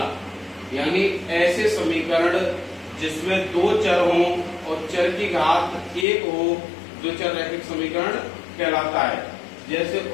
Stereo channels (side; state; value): right; drops out; at 6.1 s